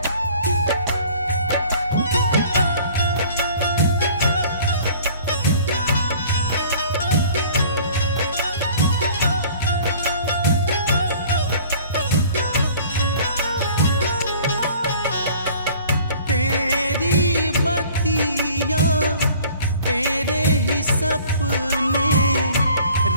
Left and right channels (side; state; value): both; inverted; correlation -0.50